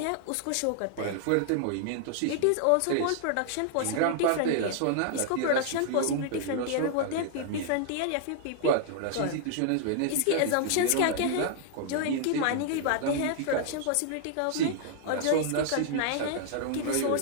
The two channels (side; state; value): both; different; correlation -0.01